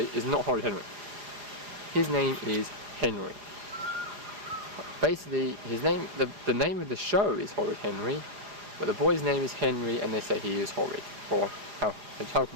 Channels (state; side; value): late; left; 4.9 ms